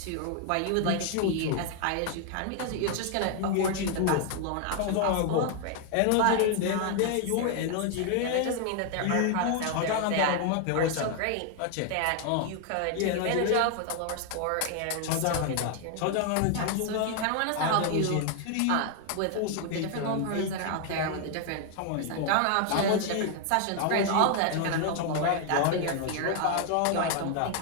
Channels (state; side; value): different; both; correlation 0.00